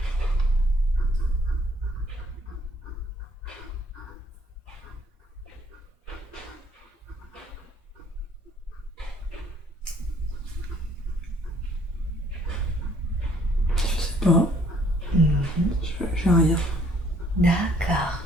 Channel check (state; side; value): normal; both; correlation 0.62